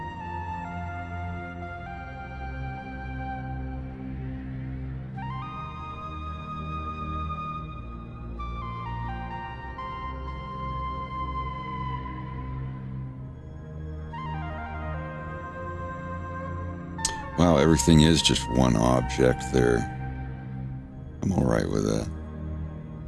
Wow, everything is just one object there. I'm all right with that.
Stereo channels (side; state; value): both; identical; correlation 1.00